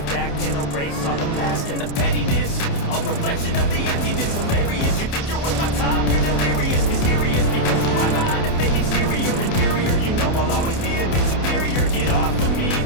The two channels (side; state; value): right; late; 28 ms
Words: that can erase all the mask and the pettiness. A reflection of the emptiness, hilarious. You think you're worth my time, you're delirious, mysterious, because who I'm behind a fake exterior, inferior. You know I'll always be a bit superior. Get off of me,